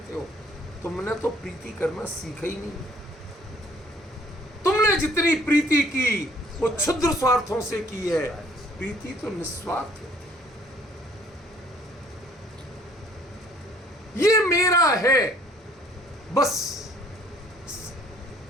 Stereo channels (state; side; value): normal; both; correlation 0.58